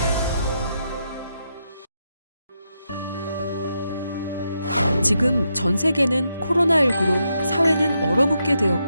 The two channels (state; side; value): inverted; both; correlation -0.82